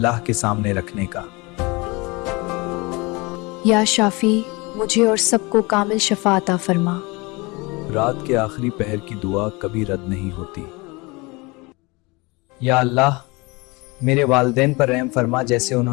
کے سامنے رکھنے کا۔ یا شافی، مجھے اور سب کو کامل شفا عطا فرما۔ رات کے آخری پہر کی دعا کبھی رد نہیں ہوتی۔ یا اللہ، میرے والدین پر رحم فرما جیسے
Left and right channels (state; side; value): quieter; right; 25.7 dB